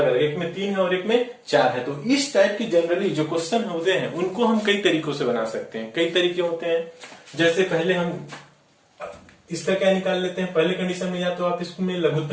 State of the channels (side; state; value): both; identical; correlation 1.00